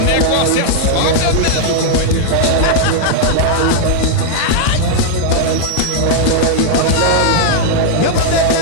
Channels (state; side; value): different; both; correlation -0.01